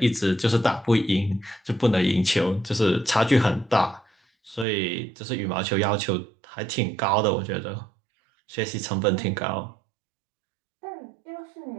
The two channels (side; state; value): left; drops out; at 4.7 s